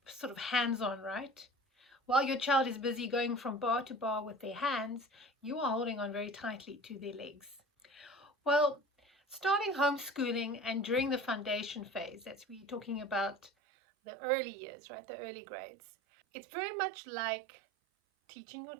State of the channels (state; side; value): drops out; left; at 13.5 s